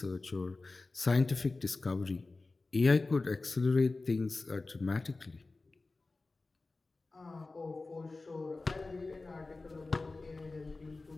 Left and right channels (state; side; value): quieter; right; 3.5 dB